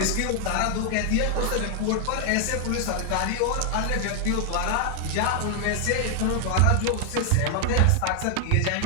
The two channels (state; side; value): different; both; correlation 0.00